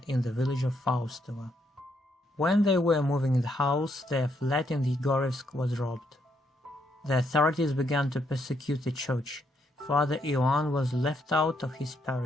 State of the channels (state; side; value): normal; both; correlation 0.75